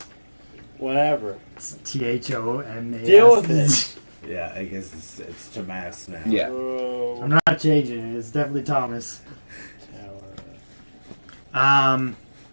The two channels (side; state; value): both; inverted; correlation -1.00